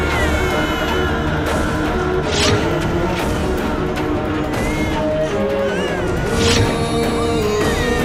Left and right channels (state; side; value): identical; both; correlation 1.00